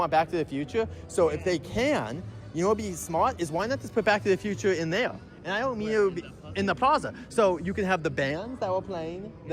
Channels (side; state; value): both; identical; correlation 1.00